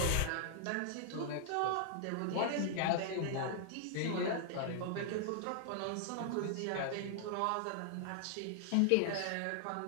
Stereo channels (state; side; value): different; both; correlation -0.01